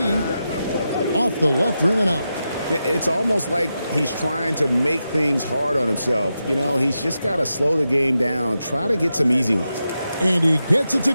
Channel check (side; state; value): both; inverted; correlation -0.89